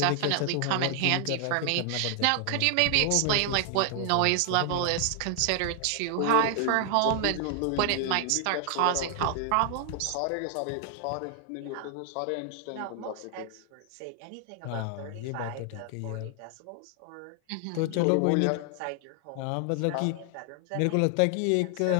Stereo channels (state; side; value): different; both; correlation 0.00